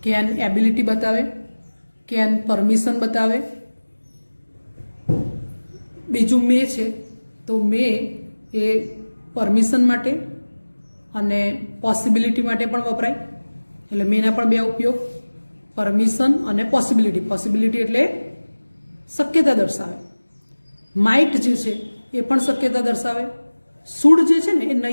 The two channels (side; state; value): both; inverted; correlation -1.00